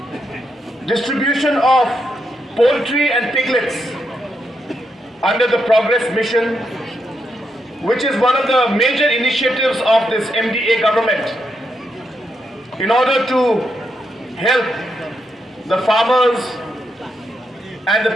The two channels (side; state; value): both; normal; correlation 0.81